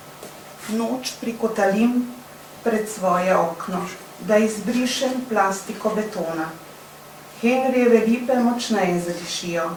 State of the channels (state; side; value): identical; both; correlation 1.00